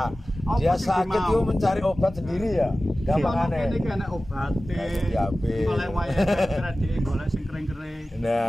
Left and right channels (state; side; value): normal; both; correlation 0.96